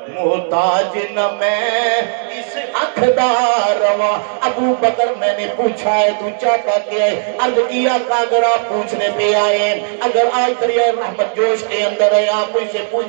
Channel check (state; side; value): silent; left; digital silence